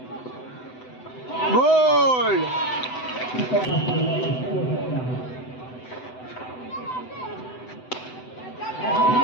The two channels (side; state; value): right; late; 7.9 ms